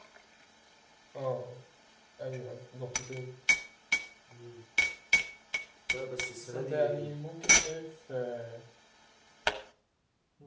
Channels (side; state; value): both; identical; correlation 1.00